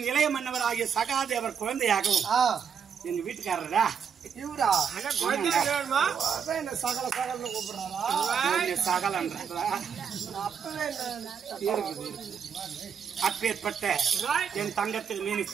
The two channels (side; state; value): left; quieter; 7.2 dB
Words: இளைய மன்னவராகிய சகாதேவர் குழந்தையாகவும் எங்க வீட்டுக்காரரா இவரா சகல சகல்னு கூப்பிடுறாரா சகலன்றா அப்பேற்பட்ட என் தங்கத்தில் மேனி